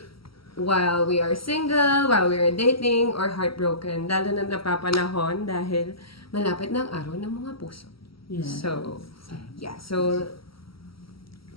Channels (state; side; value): late; right; 0.75 ms